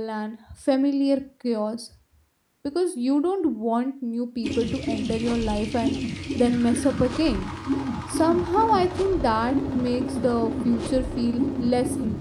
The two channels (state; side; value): identical; both; correlation 1.00